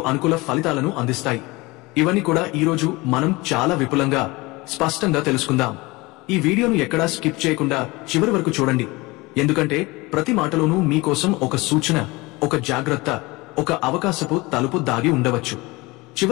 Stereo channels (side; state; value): right; quieter; 23.0 dB